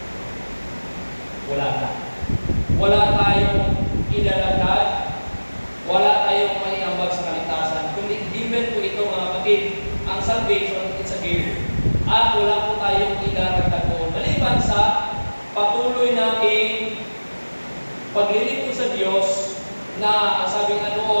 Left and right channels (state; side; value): inverted; both; correlation -1.00